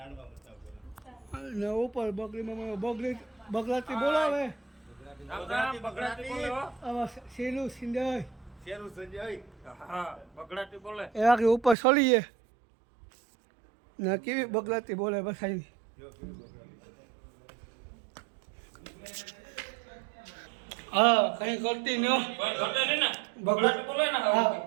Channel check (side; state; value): left; drops out; at 11.8 s